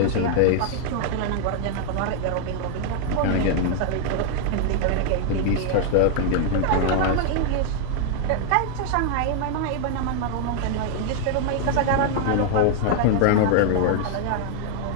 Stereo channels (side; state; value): both; different; correlation 0.00